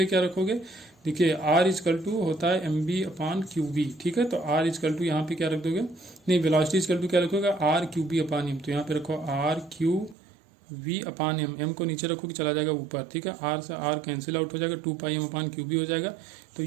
क्या रखोगे, देखिए R इक्वल टू होता है mv/qb, ठीक है। तो R इक्वल टू यहाँ पे क्या रख दोगे, नहीं वेलोसिटी इक्वल टू क्या रखोगे r/qb/m, तो यहाँ पे रखो r/qv/m, m को नीचे रखो कि चला जाएगा ऊपर, ठीक है। r से r कैंसिल आउट हो जाएगा, 2πm/qb हो जाएगा। तो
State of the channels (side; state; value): left; drops out; at 10.2 s